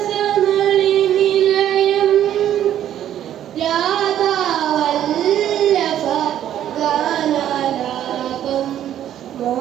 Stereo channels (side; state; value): left; quieter; 11.1 dB